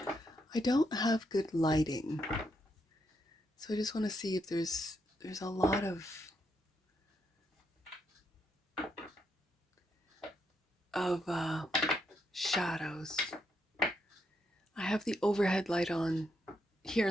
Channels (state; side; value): normal; both; correlation 0.79